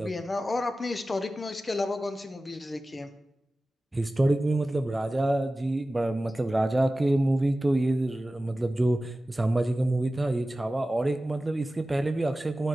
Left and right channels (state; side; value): normal; both; correlation 0.96